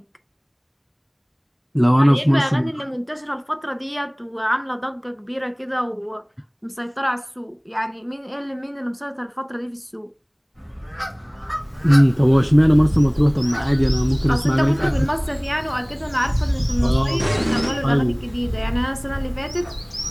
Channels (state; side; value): identical; both; correlation 1.00